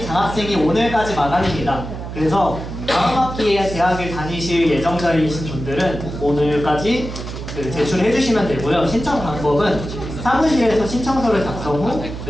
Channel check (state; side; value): noise; right; hum, 8 dB below the sound